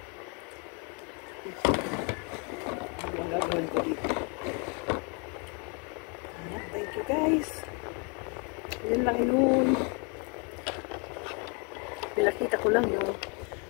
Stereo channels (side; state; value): right; quieter; 35.3 dB